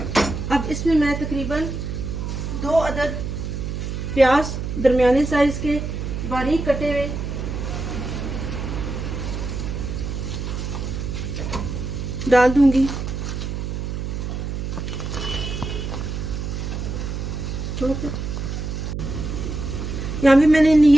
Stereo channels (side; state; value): right; noise; hum, 4 dB below the sound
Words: अब इसमें मैं तकरीबन 2 अदद प्याज दरमियाने साइज के बारीक कटे हुए डाल दूंगी। यहाँ भी मैंने